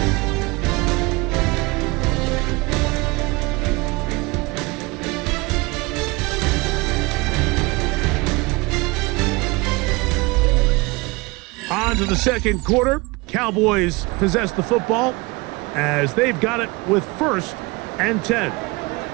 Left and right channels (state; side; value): quieter; left; 25.0 dB